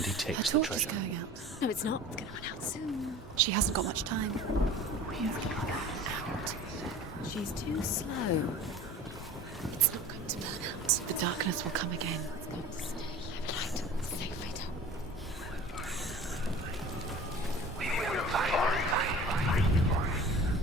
he takes the torch is treasure. going out. No, it's not. It's going to run out soon. She hasn't got much time. It's going to run out. She's too slow. It's not going to burn out. The darkness will come again. It's going to stay. Light. Stay right up.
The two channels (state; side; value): normal; both; correlation 0.40